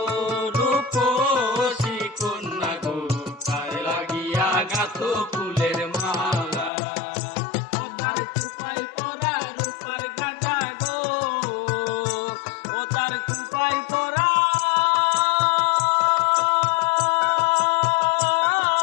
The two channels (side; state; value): right; drops out; at 6.7 s